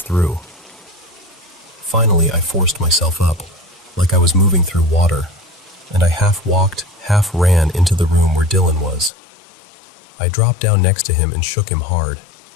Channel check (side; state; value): right; drops out; at 9.1 s